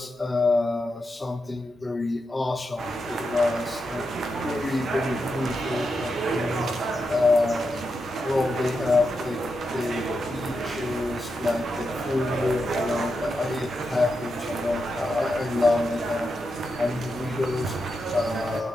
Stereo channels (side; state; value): both; normal; correlation 0.86